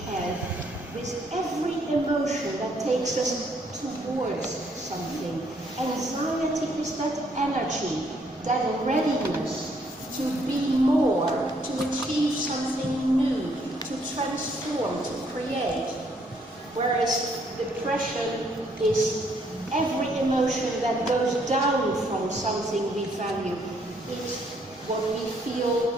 have with every emotion that takes us towards something. Anxiety is that energy, that readiness to be more, to achieve something new, to transform, to create. Whereas depression is every emotion that goes down from something we value. It's what we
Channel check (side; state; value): both; normal; correlation 0.69